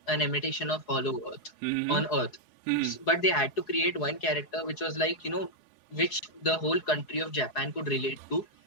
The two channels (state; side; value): late; right; 4.8 ms